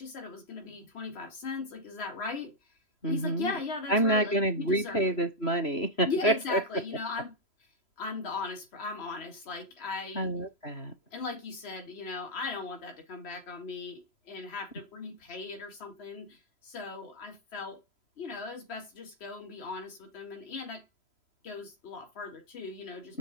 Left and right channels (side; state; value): right; late; 3.0 ms